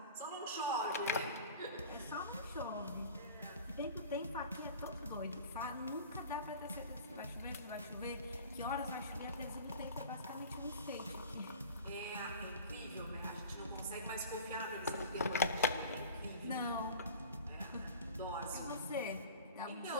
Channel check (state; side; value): inverted; both; correlation -0.40